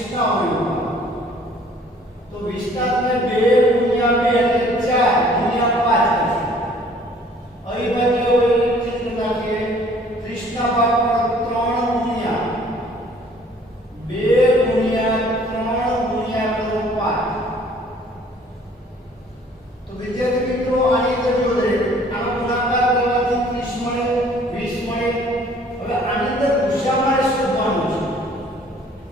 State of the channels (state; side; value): normal; both; correlation 0.56